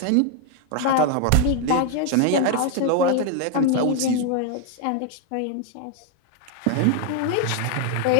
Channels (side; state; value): both; different; correlation 0.00